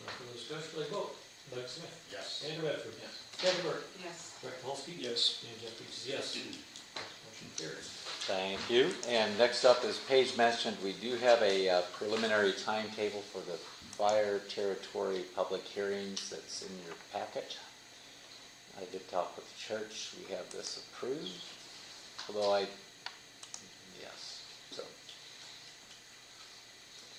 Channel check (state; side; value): identical; both; correlation 1.00